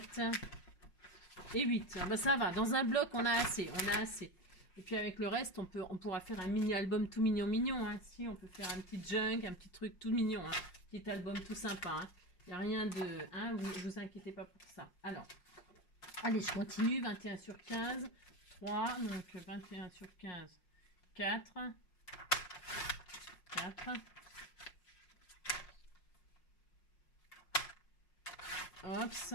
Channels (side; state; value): right; late; 5.5 ms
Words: et 8. Ah bah ça va, dans un bloc, on a assez. Et puis avec le reste, on pourra faire un mini-album tout mignon. Hein. Si, on peut faire un petit junk, un petit truc tout mignon. Hein. Petit album tout sympa. Il n'y a rien de... Hein, vous inquiétez pas pour ça. Alors, allez, je continue. 21 sur 15. 3. Donc, 21 sur 15. 4. 4. Hops.